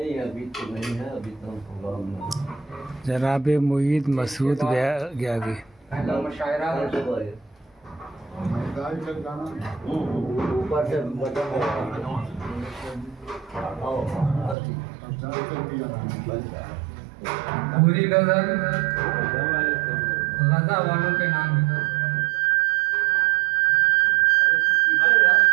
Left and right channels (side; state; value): left; drops out; at 14.6 s